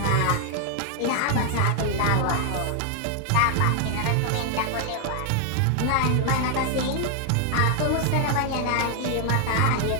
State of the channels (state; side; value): different; both; correlation 0.00